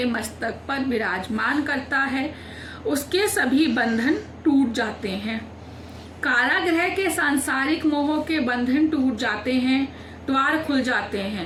मस्तक पर विराजमान करता है, उसके सभी बंधन टूट जाते हैं। कारागृह के सांसारिक मोह के बंधन टूट जाते हैं, द्वार खुल जाते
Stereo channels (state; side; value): identical; both; correlation 1.00